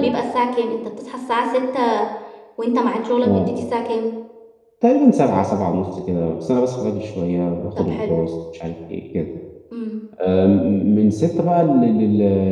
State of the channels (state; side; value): identical; both; correlation 1.00